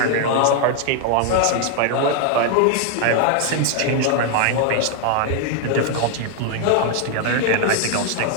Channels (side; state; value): both; different; correlation 0.00